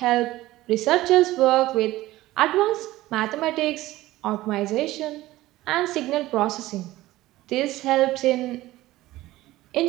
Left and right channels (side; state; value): left; quieter; 16.9 dB